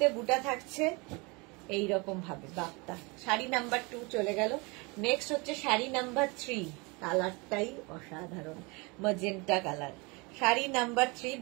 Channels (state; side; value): quieter; left; 27.9 dB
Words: বুটা থাকছে এইরকম ভাবে বাপ্তা। শাড়ি নাম্বার 2 চলে গেল। নেক্সট হচ্ছে শাড়ি নাম্বার 3, কালারটাই অসাধারণ, ম্যাজেন্টা কালার। শাড়ি নাম্বার 3